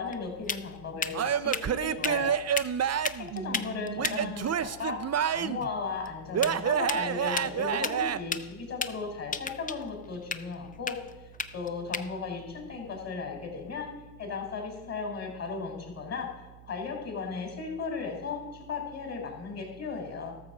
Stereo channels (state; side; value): noise; right; hum, 20 dB below the sound